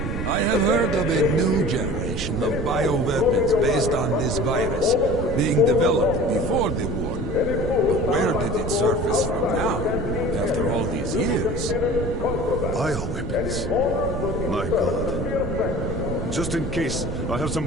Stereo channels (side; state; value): right; noise; rumble, 5 dB below the sound